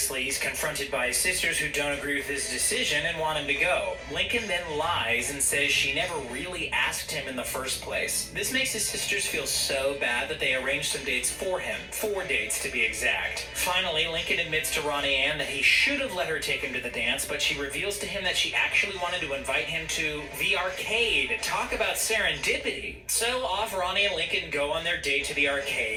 he's confronted by his sisters who don't agree with his decision and want him to go. Lincoln then lies and says she never really asked him in the first place. This makes his sisters feel so bad that they arrange some dates for him. 4 dates to be exact. Finally, Lincoln admits to Ronnie Ann that he should have let her take him to the dance, but she reveals to him that she actually wanted to invite him to the arcade. Talk about serendipity. So off Ronnie and Lincoln go on their date to the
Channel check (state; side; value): identical; both; correlation 1.00